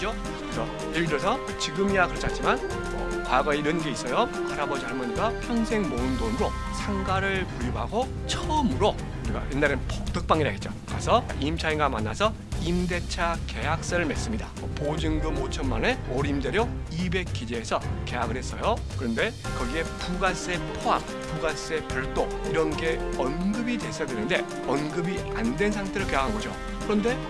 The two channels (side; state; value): both; identical; correlation 1.00